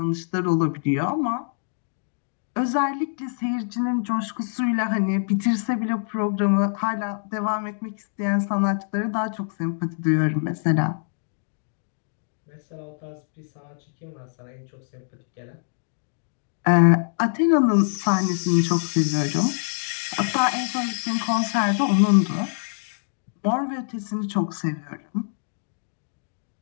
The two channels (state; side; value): silent; right; digital silence